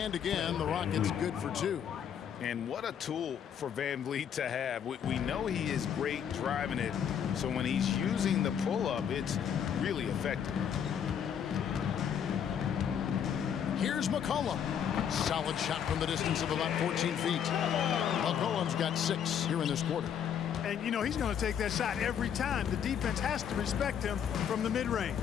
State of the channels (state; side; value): quieter; right; 8.4 dB